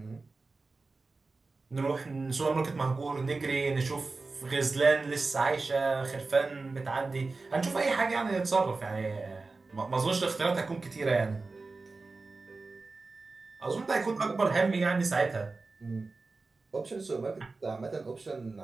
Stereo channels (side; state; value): left; quieter; 3.8 dB